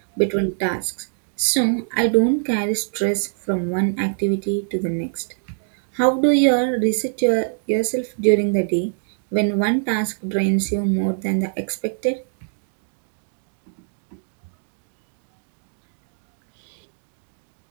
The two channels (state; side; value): silent; left; digital silence